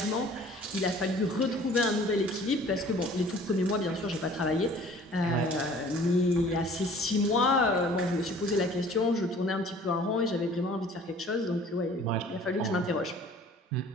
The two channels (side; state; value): both; normal; correlation 0.50